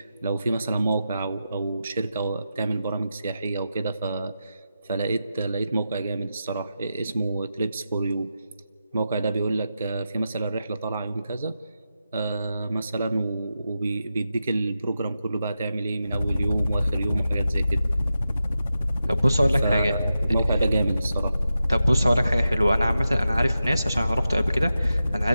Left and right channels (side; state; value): both; inverted; correlation -0.89